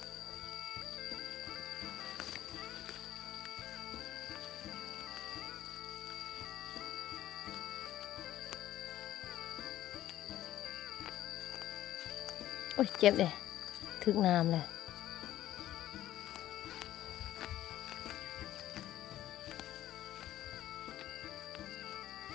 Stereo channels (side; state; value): right; quieter; 13.3 dB